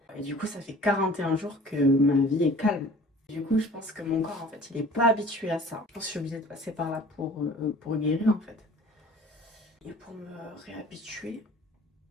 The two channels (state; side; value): normal; both; correlation 0.47